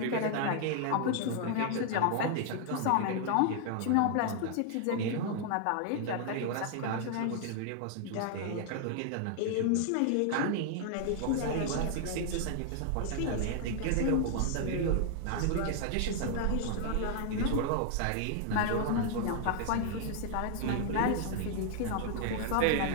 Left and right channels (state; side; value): different; both; correlation 0.00